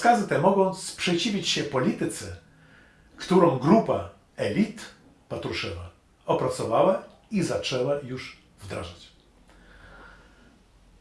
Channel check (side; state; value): both; identical; correlation 1.00